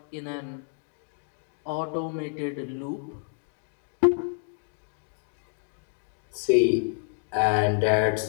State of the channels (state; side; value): silent; right; 59 dB below the other